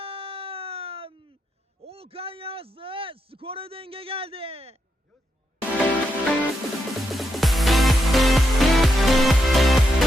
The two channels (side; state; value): both; normal; correlation 0.82